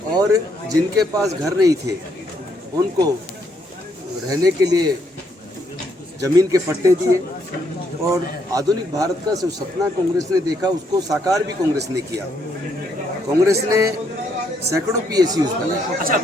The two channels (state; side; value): normal; both; correlation 0.73